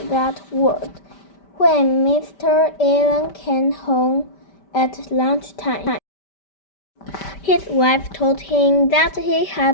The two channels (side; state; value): right; late; 5.1 ms